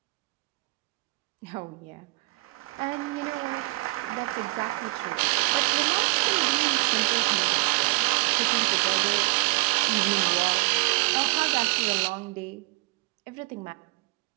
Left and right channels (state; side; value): quieter; left; 25.5 dB